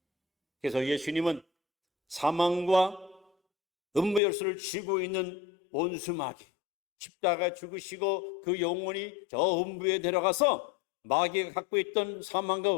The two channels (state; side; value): drops out; right; at 4.2 s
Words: 그래서 예수님은 사망과 음부 열쇠를 쥐고 있는 원수마귀, 십자가에 죽으시고 그 영혼이 저 음부에 내려가서 마귀가 갖고 있던